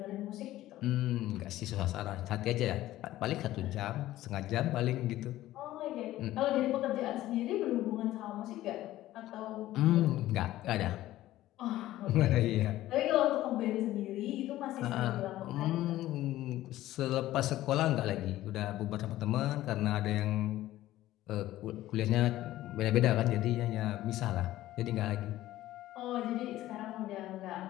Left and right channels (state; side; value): quieter; right; 15.0 dB